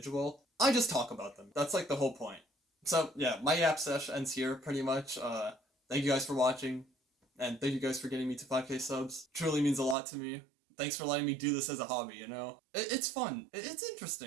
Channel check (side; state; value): left; drops out; at 10.0 s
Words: I just talk about them. That's like the whole point. So yeah, my yap sesh ends here pretty much. Thank you guys for watching, and thank you guys for getting me to 5K subs. Truly means a lot to me. Thanks for letting me do this as a hobby, you know? It's fun. It's